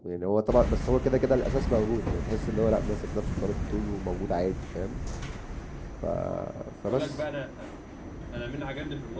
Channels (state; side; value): identical; both; correlation 1.00